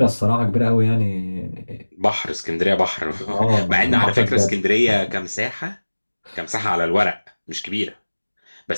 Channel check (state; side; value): inverted; both; correlation -1.00